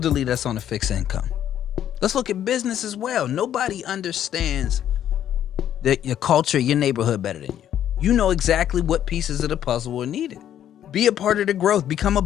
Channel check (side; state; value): right; quieter; 10.6 dB